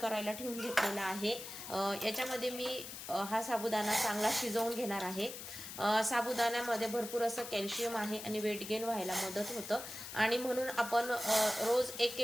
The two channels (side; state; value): left; noise; hiss, 10 dB below the sound